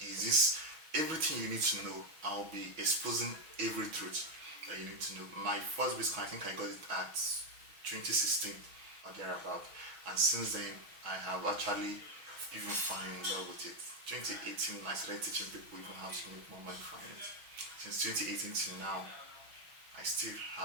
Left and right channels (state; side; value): late; left; 6.2 ms